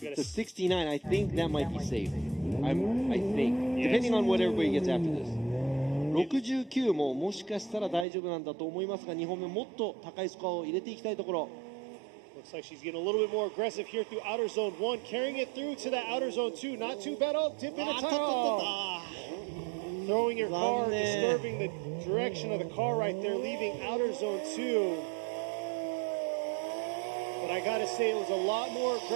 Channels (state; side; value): drops out; left; at 8.1 s